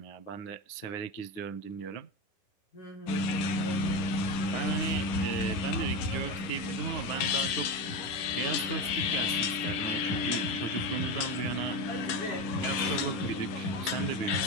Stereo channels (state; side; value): late; right; 11 ms